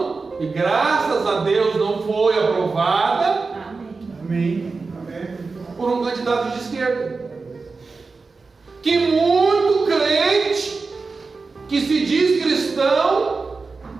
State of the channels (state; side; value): quieter; left; 4.2 dB